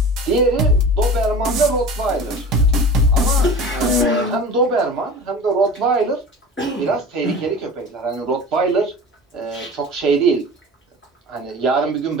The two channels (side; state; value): both; normal; correlation 0.37